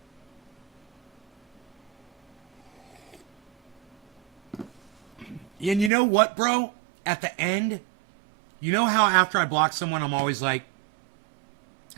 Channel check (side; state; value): left; drops out; at 5.9 s